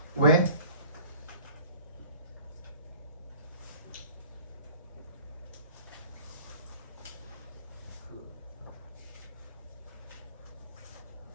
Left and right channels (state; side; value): inverted; both; correlation -0.47